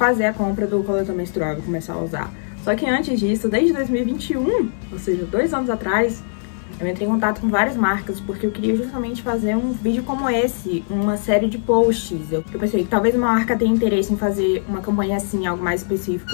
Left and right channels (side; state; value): right; silent; 65 dB below the other